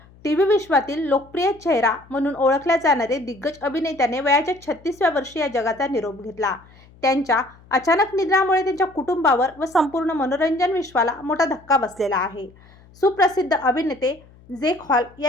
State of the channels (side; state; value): left; noise; hum, 26 dB below the sound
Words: टीव्ही विश्वातील लोकप्रिय चेहरा म्हणून ओळखल्या जाणारे दिग्गज अभिनेत्याने वयाच्या 36व्या वर्षी या जगाचा निरोप घेतला. त्यांच्या अचानक निधनामुळे त्यांच्या कुटुंबावर व संपूर्ण मनोरंजन विश्वाला मोठा धक्का बसलेला आहे. सुप्रसिद्ध अभिनेते जेक हॉल